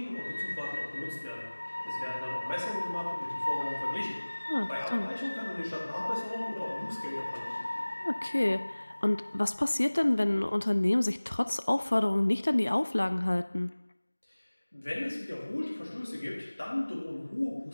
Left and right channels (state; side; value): inverted; both; correlation -1.00